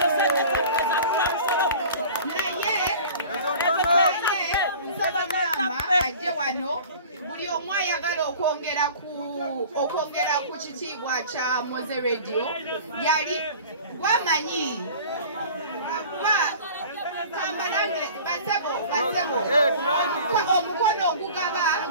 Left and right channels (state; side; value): inverted; both; correlation -0.42